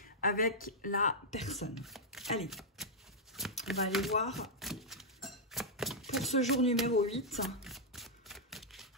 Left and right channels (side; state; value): both; normal; correlation -0.06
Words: avec la personne. Allez, on va aller voir pour ce jour numéro 8,